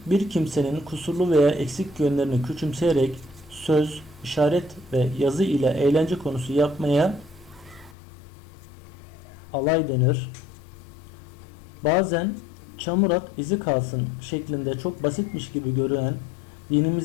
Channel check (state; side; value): drops out; right; at 8.0 s